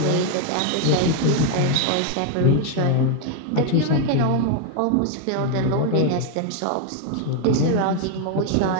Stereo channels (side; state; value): both; different; correlation 0.01